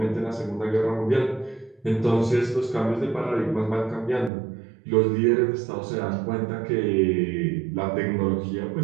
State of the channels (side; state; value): left; drops out; at 4.3 s